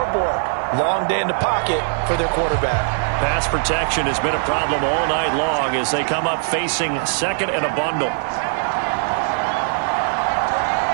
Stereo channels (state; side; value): silent; left; 59 dB below the other